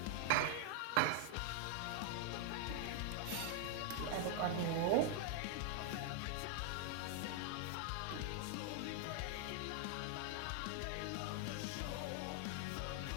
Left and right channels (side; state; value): both; different; correlation 0.00